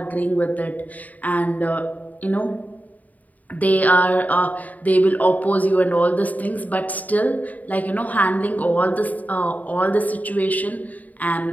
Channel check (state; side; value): late; right; 0.076 ms